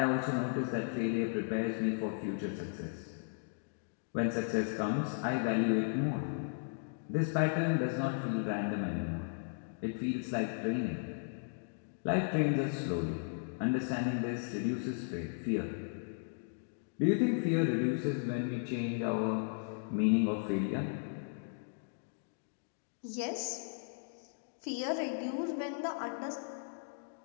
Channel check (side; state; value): right; silent; digital silence